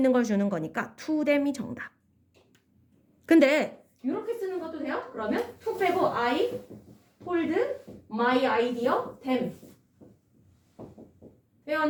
걸 주는 거니까 to them이 정답. 근데 이렇게 쓰는 것도 돼요? 그러면 to 빼고 I told my idea them. 돼요,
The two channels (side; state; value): both; identical; correlation 1.00